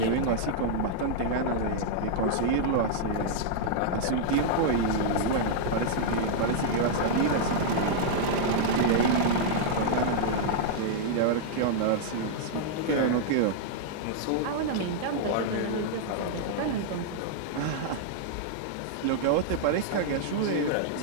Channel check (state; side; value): different; both; correlation -0.01